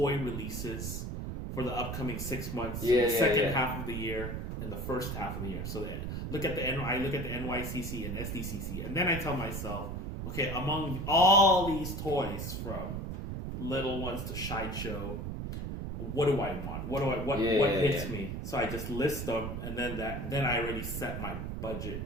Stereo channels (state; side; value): noise; right; rumble, 5 dB below the sound